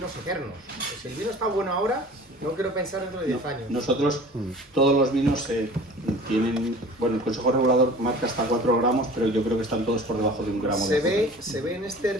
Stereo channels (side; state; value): both; normal; correlation 0.43